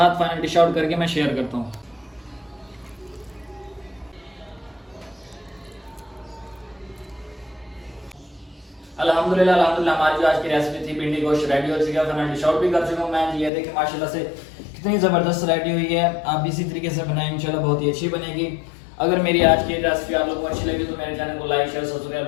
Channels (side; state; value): right; drops out; at 13.5 s